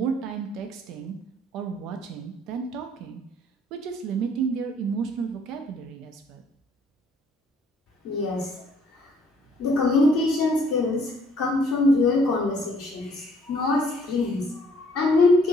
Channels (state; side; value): normal; both; correlation 0.62